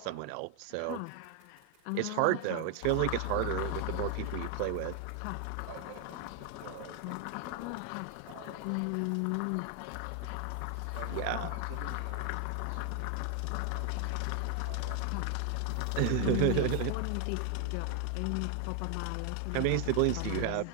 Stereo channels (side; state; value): both; different; correlation 0.00